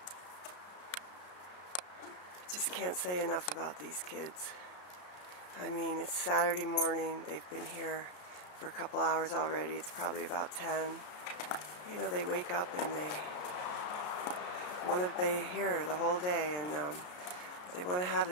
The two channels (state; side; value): late; right; 33 ms